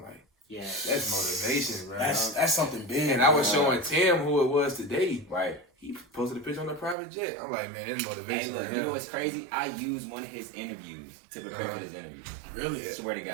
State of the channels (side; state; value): left; drops out; at 7.0 s